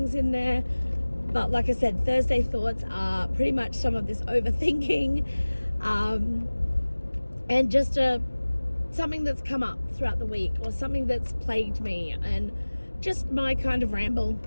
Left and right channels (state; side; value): inverted; both; correlation -1.00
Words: in there. But like I said, Thursday Thoughts are pretty much some of this overthinking, and just something that's come up throughout the week, or something that's plagued me, and just my kind of ramble